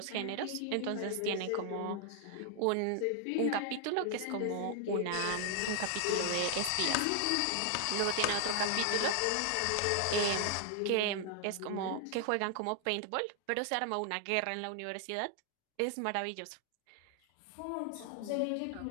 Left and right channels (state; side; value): different; both; correlation 0.00